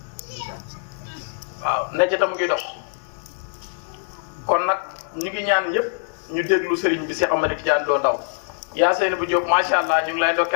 waaw necc ta mu ngi dox kon nag ñu ngi ñaan ñëpp ñu déglu sëriñ bi Cheikh Ahmed Tidiane Lo Ndaw yaa Seyni bu Diop macha allah ñu ngi lay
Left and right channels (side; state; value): right; silent; digital silence